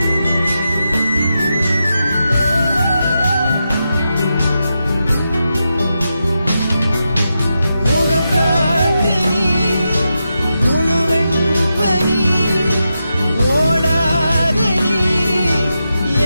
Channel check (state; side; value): inverted; both; correlation -0.88